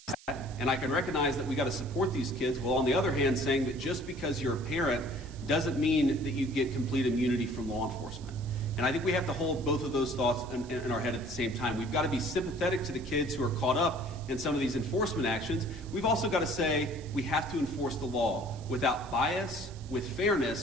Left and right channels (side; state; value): right; noise; hiss, 22 dB below the sound